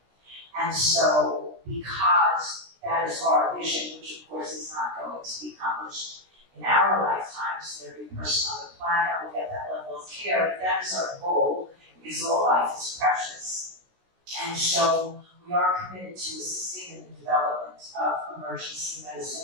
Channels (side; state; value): left; late; 16 ms